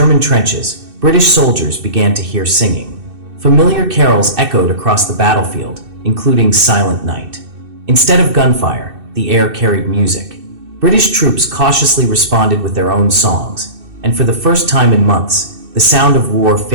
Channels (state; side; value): late; left; 2.6 ms